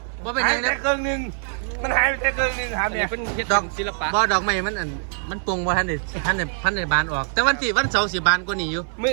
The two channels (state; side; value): silent; left; 61 dB below the other